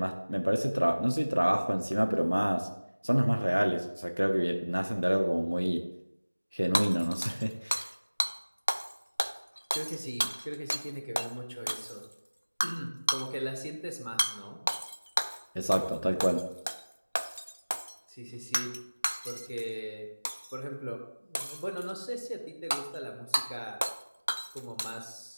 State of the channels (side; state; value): both; inverted; correlation -1.00